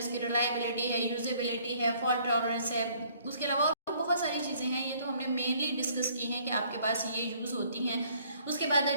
रिलायबिलिटी है, यूजेबिलिटी है, फॉल्ट टॉलरेंस है, उसके अलावा बहुत सारी चीज़ें हैं, ये तो हमने मेनली डिस्कस की हैं कि आपके पास ये यूज़ होती हैं। उसके बाद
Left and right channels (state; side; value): inverted; both; correlation -0.60